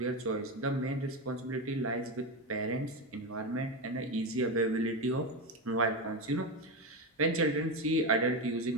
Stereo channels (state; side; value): normal; both; correlation 0.14